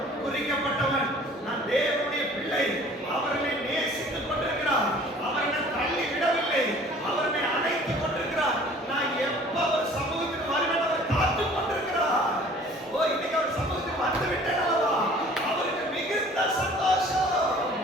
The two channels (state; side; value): normal; both; correlation 0.50